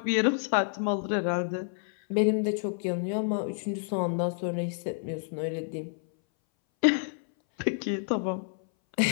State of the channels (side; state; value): right; silent; 59 dB below the other